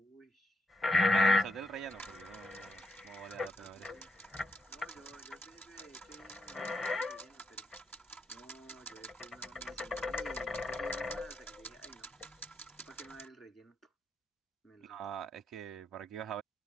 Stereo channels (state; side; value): normal; both; correlation 0.81